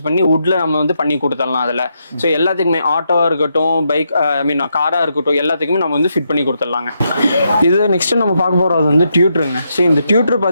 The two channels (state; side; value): inverted; both; correlation -0.81